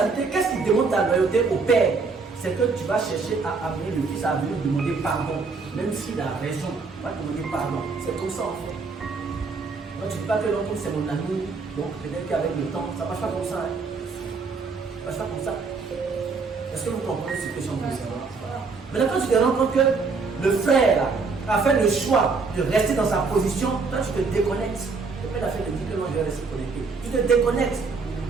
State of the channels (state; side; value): quieter; left; 4.5 dB